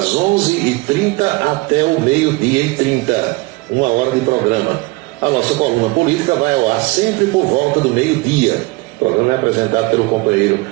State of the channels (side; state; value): left; quieter; 23.9 dB